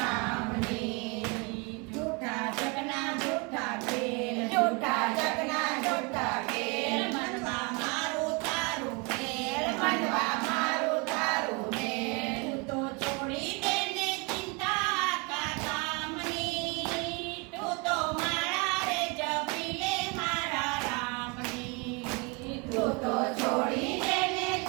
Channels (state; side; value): quieter; left; 30.6 dB